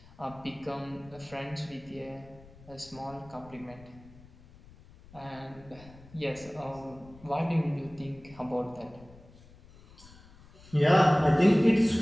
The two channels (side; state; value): left; noise; rumble, 22 dB below the sound